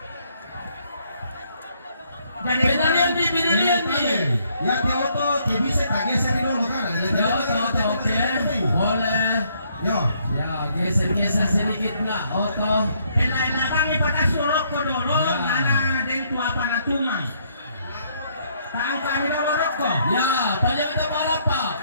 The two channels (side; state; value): both; inverted; correlation -0.69